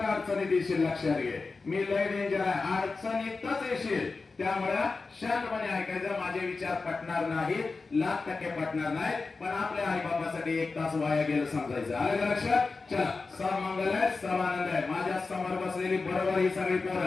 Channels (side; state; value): right; quieter; 4.1 dB